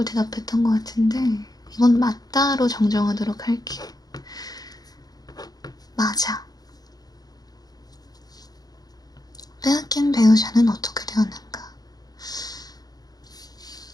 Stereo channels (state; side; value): late; right; 0.19 ms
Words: 대답했던 것 같은데 이건 맞다로 정정하도록 할게. 맞아. 빼앗긴 배우자는 어떻게 되었는가?